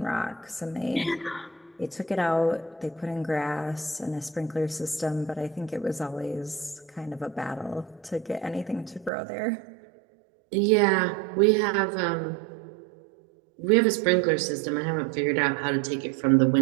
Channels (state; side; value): drops out; left; at 9.1 s